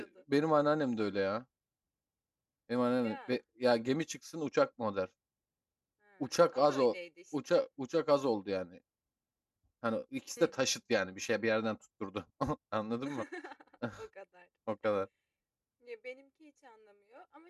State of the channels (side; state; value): both; identical; correlation 1.00